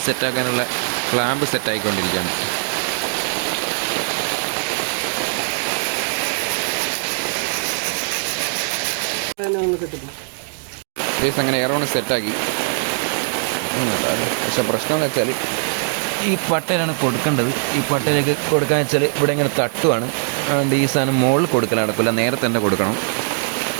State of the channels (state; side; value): silent; left; 65 dB below the other